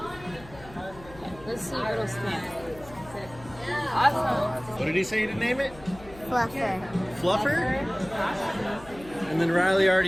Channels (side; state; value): left; noise; hum, 19 dB below the sound